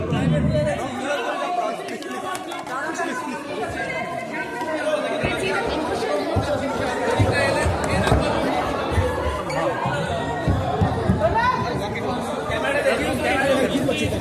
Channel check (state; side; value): identical; both; correlation 1.00